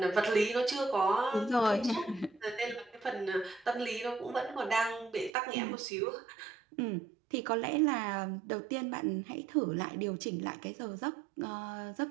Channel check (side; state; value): left; drops out; at 5.3 s